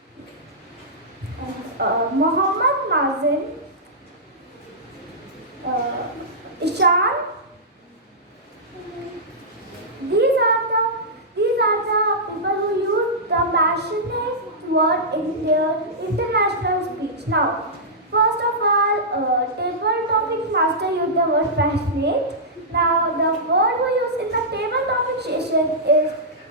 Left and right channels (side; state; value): both; normal; correlation -0.13